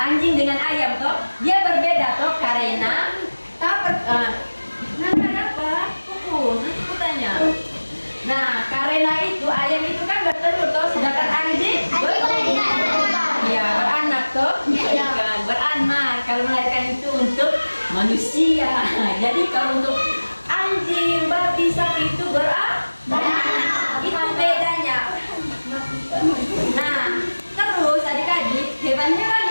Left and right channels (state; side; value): inverted; both; correlation -1.00